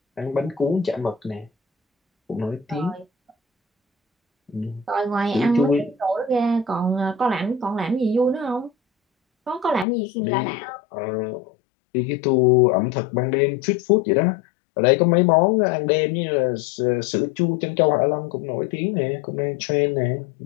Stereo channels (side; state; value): right; drops out; at 9.9 s